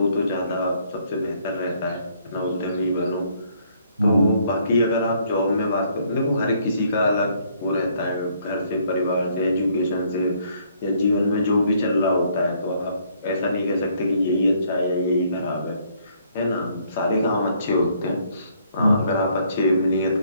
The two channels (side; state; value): both; inverted; correlation -0.66